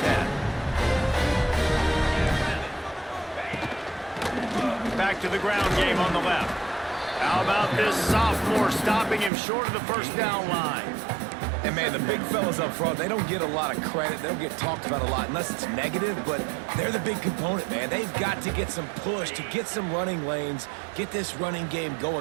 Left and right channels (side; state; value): left; drops out; at 9.3 s